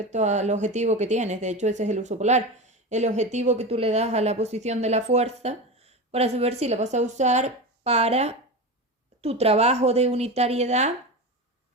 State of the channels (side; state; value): both; normal; correlation 0.23